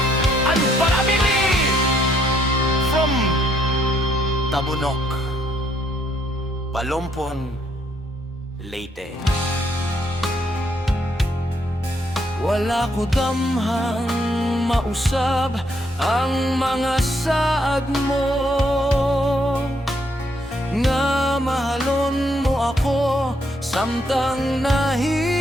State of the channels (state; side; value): normal; both; correlation 0.71